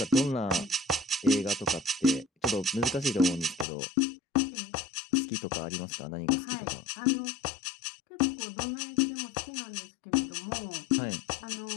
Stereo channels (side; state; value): right; drops out; at 3.7 s